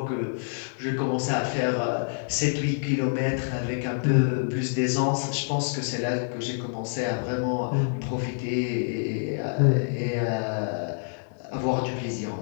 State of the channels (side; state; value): right; silent; digital silence